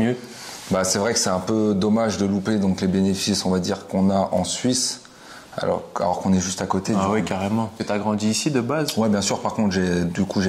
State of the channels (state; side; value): identical; both; correlation 1.00